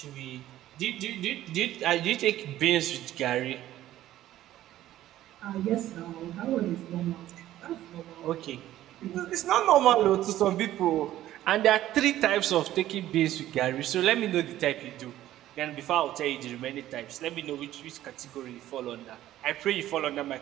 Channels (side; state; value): left; quieter; 13.7 dB